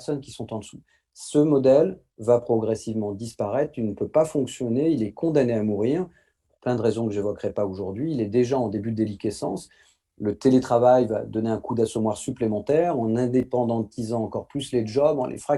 qui sont en dessous. Ce modèle va progressivement disparaître, il ne peut pas fonctionner, il est condamné à mourir, pour plein de raisons que j'évoquerai pas aujourd'hui. Il est déjà en début de déliquescence. Le télétravail va donner un coup d'assommoir supplémentaire en indépendantisant encore plus les jobs, en les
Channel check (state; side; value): identical; both; correlation 1.00